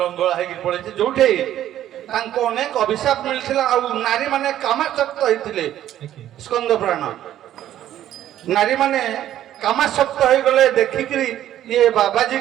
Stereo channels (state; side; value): quieter; left; 12.1 dB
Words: ଲଙ୍ଗଳା ହେଇକିରି ପଳେଇଛି ଯୋଉଠି ତାଙ୍କୁ ଅନେକ ଅଭିଶାପ ମିଳିଥିଲା ଆଉ ନାରୀ ମାନେ କାମାସକ୍ତ ହେଇଥିଲେ ସ୍କନ୍ଦ ପୁରାଣ ନାରୀ ମାନେ କାମାସକ୍ତ ହେଇଗଲେ ଦେଖିକିରି ଇଏ ବାବାଜୀ